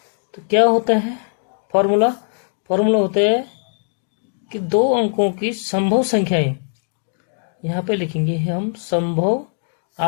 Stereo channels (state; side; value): silent; right; digital silence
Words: तो क्या होता है फॉर्मूला होता है कि 2 अंकों की संभव संख्याएं, यहाँ पे लिखेंगे हम संभव,